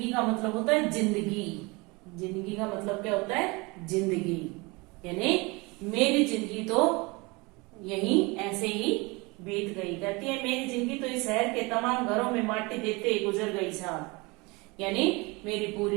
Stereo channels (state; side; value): quieter; left; 25.9 dB